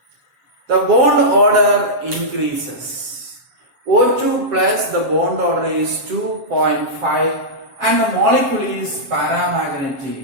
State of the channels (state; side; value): late; left; 7.4 ms